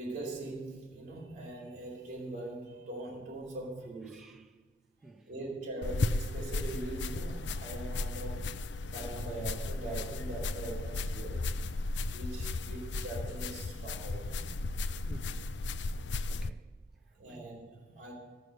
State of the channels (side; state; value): both; normal; correlation 0.72